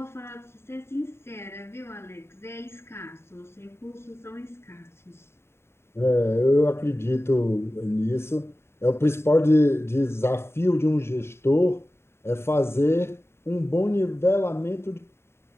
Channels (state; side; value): late; right; 0.12 ms